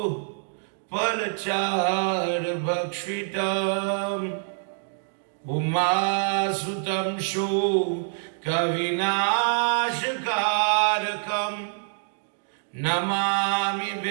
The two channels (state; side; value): silent; left; digital silence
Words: Palachar Bhakshitam Umasutam Shu Kavinashkarakam Namami